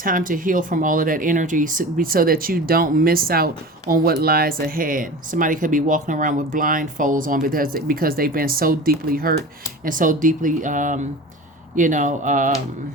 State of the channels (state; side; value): normal; both; correlation 0.35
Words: to heal from all of that energy so that you don't miss out on what lies ahead. Somebody could be walking around with blindfolds on because they've been so deeply hurt and so deeply